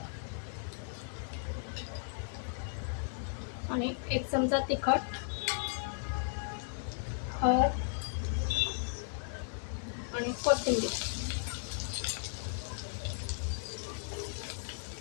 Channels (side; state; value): right; silent; digital silence